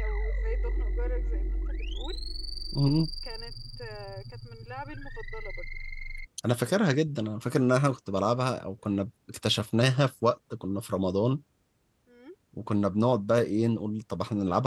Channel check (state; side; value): identical; both; correlation 1.00